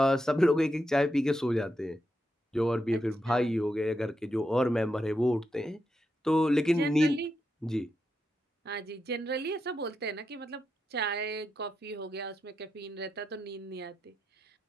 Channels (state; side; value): normal; both; correlation 0.85